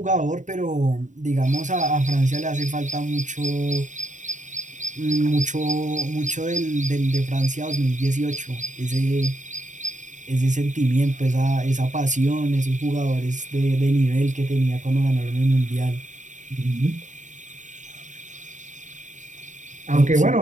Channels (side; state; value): left; late; 0.36 ms